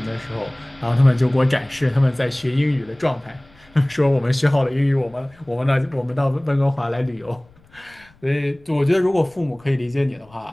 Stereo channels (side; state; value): left; noise; rumble, 29 dB below the sound